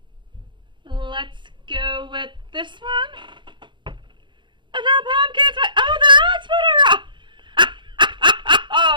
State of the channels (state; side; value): late; left; 0.23 ms